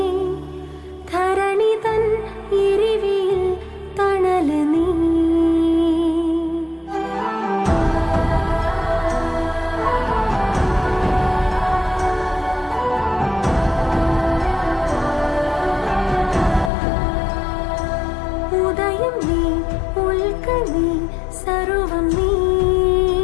ധരണി തൻ എരിവിൽ തണല് നീ. ഉദയം നീ, ഉൽക്ക നീ, സർവം നീ,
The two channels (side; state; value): right; drops out; at 16.7 s